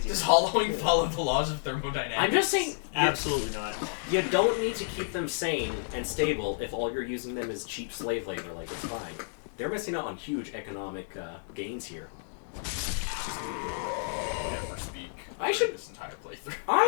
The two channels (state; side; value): silent; right; digital silence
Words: Does hollowing follow the laws of thermodynamics? I'm just saying, Absolutely not. you don't need to keep them sane and stable if all you're using them is cheap slave labor. Like, it's fine. They're missing out on huge economic gains here. Never speak. I should- this entire playthrough.